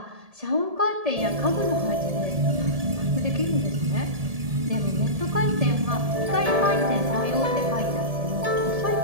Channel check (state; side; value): late; left; 1.7 ms